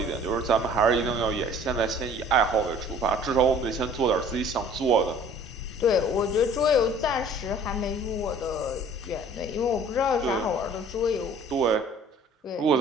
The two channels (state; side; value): normal; both; correlation 0.51